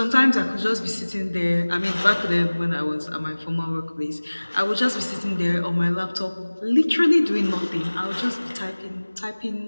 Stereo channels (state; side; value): inverted; both; correlation -1.00